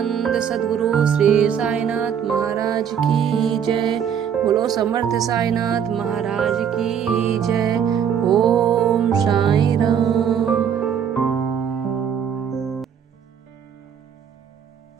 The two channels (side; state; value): left; quieter; 8.2 dB